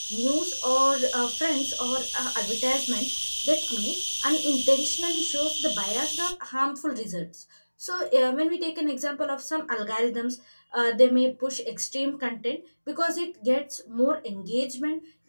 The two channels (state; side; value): inverted; both; correlation -1.00